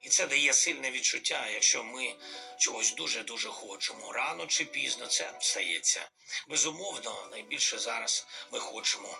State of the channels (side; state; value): both; identical; correlation 1.00